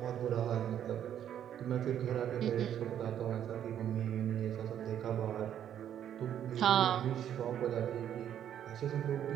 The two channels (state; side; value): quieter; left; 10.0 dB